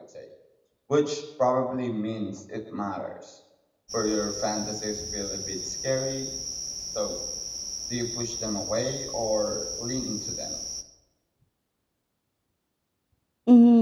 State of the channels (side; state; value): both; identical; correlation 1.00